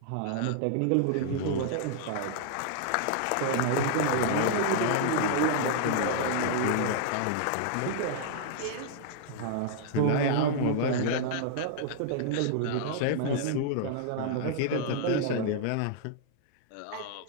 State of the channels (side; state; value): both; different; correlation -0.01